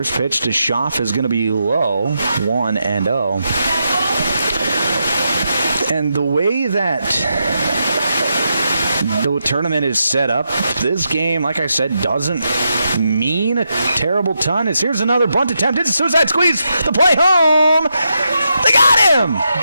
pitch to Schaff is going to be low, 1-0. And the way that the tournament is set up, this game, like I said, doesn't mean a terrible ton. Here's another bunt attempt. It's a suicide squeeze. The play home. They got him.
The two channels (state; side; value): inverted; both; correlation -0.84